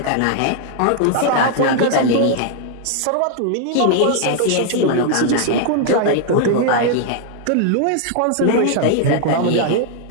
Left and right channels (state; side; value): different; both; correlation 0.00